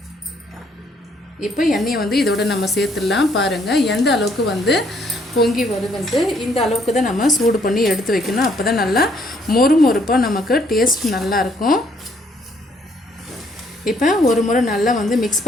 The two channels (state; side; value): normal; both; correlation 0.67